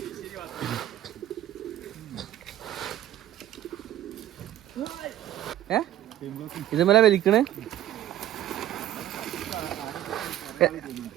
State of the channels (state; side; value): quieter; left; 12.5 dB